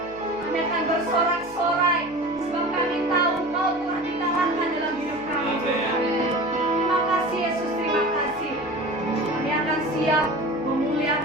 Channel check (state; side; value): noise; right; hum, 24 dB below the sound